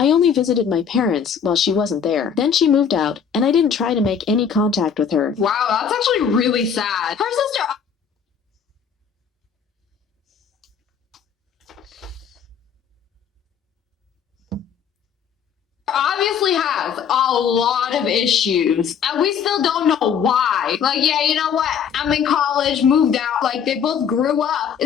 only visited my parents while she wasn't there. Then she moved out, and I didn't try to make any contact with her. Wow, that's actually really sad. Her sister obviously has a lot of issues, and we still don't know why. Yeah, you know what? I'm in college, moved out. They both grew up.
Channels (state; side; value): quieter; right; 7.3 dB